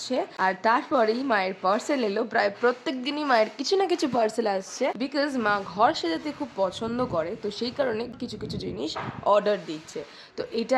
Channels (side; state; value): both; identical; correlation 1.00